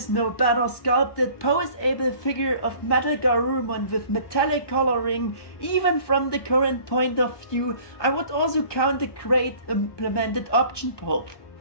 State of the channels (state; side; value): late; right; 1.2 ms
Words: no better sculpted poseable figure of MetalGarurumon with metallic coloring. Even from the current point of view, I would also count the great implemented option